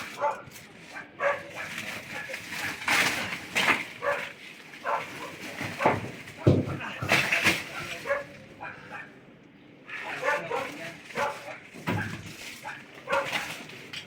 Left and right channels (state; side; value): identical; both; correlation 1.00